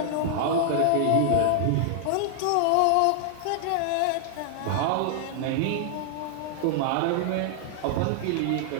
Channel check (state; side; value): different; both; correlation 0.00